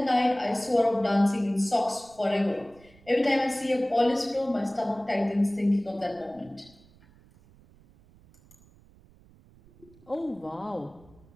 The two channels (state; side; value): noise; right; rumble, 27 dB below the sound